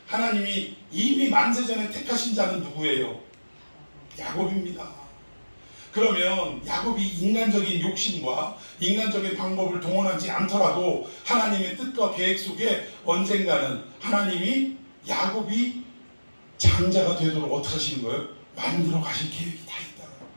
하나님이 이미 만세전에 택하신 자는 누구예요? 야곱입니다. 그러면 야곱이 인간적인 욕심과 인간적인 방법을 동원하지 않더라도 하나님의 뜻과 계획 속에 언젠가는 하나님이 야곱이 장자가 되도록 어떻게 하시는 거예요? 만들어 가실 계획이 다 있다.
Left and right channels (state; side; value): inverted; both; correlation -1.00